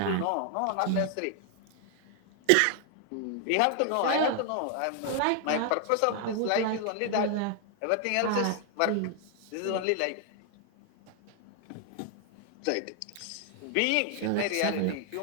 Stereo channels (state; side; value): different; both; correlation 0.00